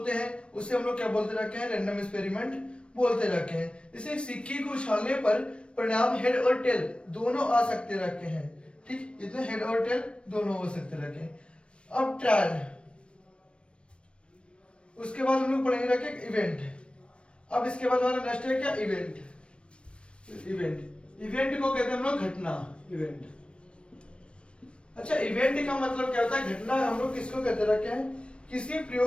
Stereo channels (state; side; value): late; right; 0.058 ms